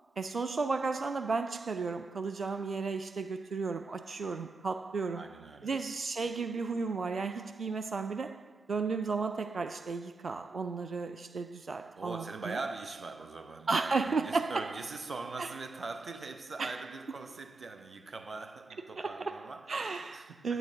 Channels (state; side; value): quieter; left; 3.8 dB